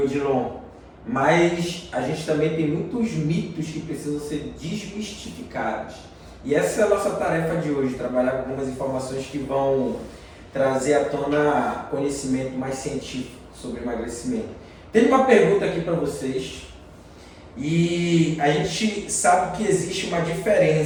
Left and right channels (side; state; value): both; identical; correlation 1.00